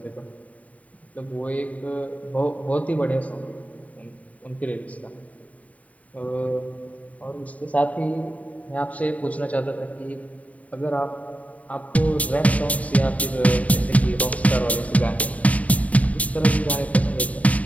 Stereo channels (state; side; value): late; right; 0.069 ms